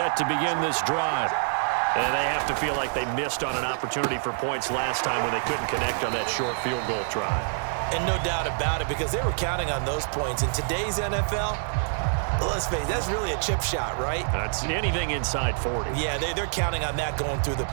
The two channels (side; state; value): left; silent; digital silence